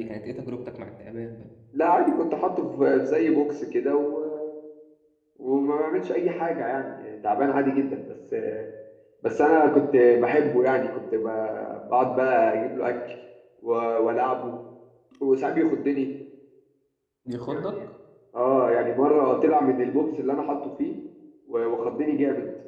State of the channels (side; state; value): both; identical; correlation 1.00